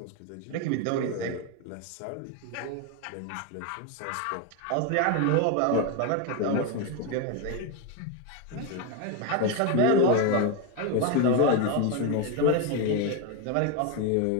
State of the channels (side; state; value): both; different; correlation 0.02